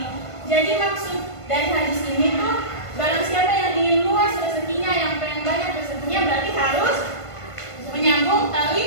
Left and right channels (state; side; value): late; right; 1.5 ms